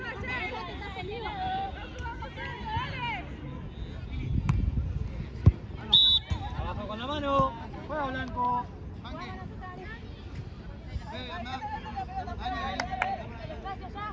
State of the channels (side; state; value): both; identical; correlation 1.00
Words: Abajo con la mano. Juega blanco. Espacio ya.